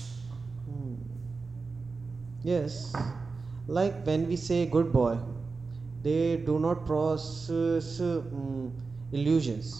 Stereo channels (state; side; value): quieter; left; 4.3 dB